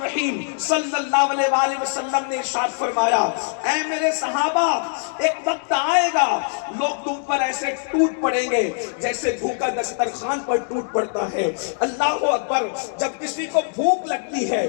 صلی اللہ علیہ وآلہ وسلم نے ارشاد فرمایا، اے میرے صحابہ، ایک وقت آئے گا لوگ تم پر ایسے ٹوٹ پڑیں گے جیسے بھوکا دسترخوان پر ٹوٹ پڑتا ہے۔ اللہ اکبر! جب کسی کو بھوک لگتی ہے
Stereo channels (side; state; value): right; silent; digital silence